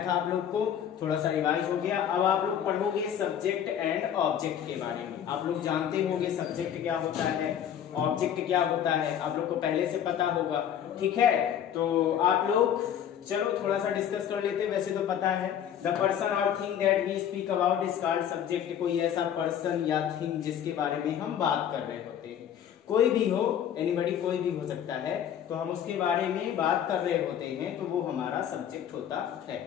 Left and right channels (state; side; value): quieter; right; 9.5 dB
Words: था आप लोग को, थोड़ा सा रिवाइज हो गया। अब आप लोग पढ़ोगे सब्जेक्ट एंड ऑब्जेक्ट के बारे में। आप लोग जानते होंगे सब्जेक्ट क्या होता है, ऑब्जेक्ट क्या होता है, आप लोग को पहले से पता होगा, ठीक है। तो आप लोग चलो थोड़ा सा डिस्कस कर लेते हैं। वैसे तो पता है, द पर्सन और thing that we speak about is called subject. कोई ऐसा पर्सन या थिंग जिसके बारे में हम बात कर रहे होते हैं, कोई भी हो, एनीबॉडी, कोई भी हो सकता है, तो हम उसके बारे में बात कर रहे होते हैं, तो वो हमारा सब्जेक्ट होता है।